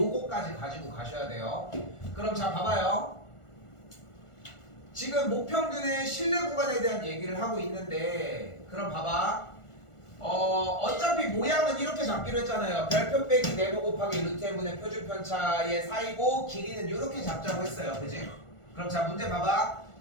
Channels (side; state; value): right; late; 1.4 ms